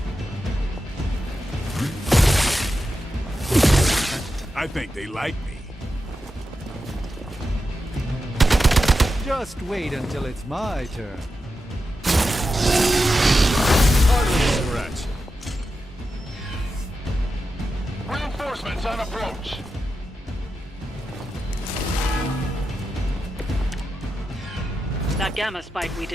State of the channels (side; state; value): both; normal; correlation 0.90